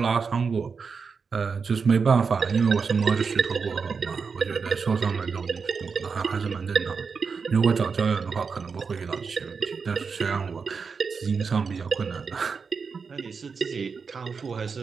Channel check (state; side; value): quieter; left; 5.4 dB